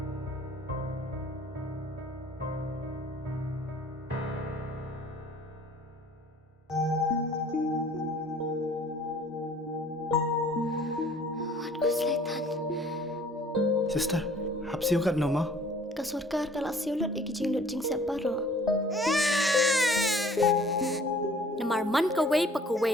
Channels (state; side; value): normal; both; correlation 0.53